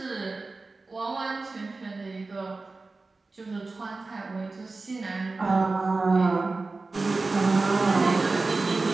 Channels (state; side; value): quieter; left; 3.6 dB